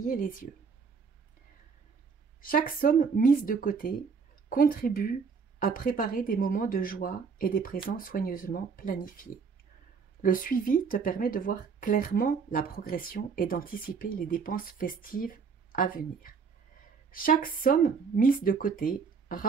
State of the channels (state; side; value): quieter; left; 5.6 dB